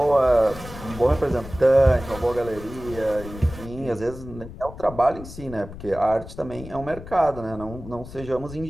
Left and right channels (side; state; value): left; noise; rumble, 14 dB below the sound